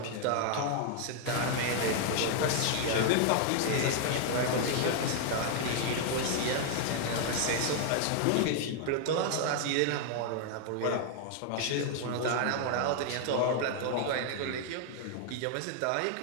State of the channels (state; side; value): different; both; correlation 0.00